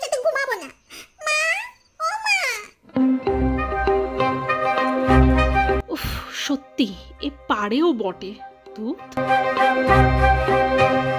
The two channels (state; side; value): identical; both; correlation 1.00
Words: সাথে ঘুমাবো না। মা, ও মা। উফ, সত্যি এ পারেও বটে। তুই